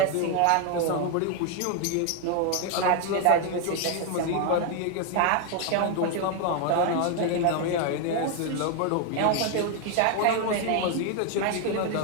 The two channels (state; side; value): different; both; correlation 0.01